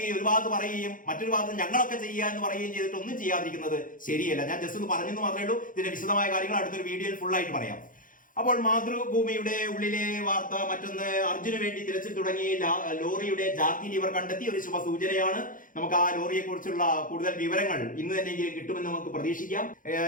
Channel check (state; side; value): late; right; 0.39 ms